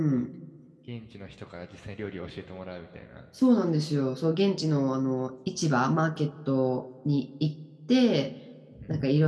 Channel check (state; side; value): identical; both; correlation 1.00